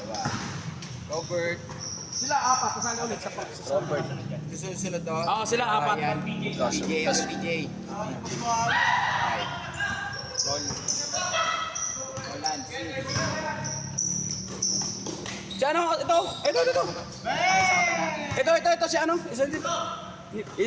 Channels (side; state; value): both; identical; correlation 1.00